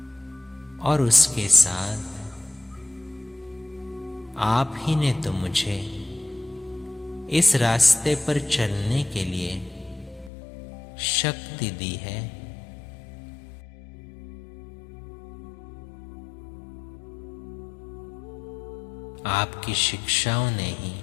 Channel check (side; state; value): right; drops out; at 10.3 s